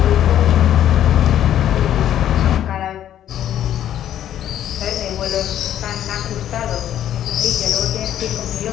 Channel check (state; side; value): quieter; right; 11.1 dB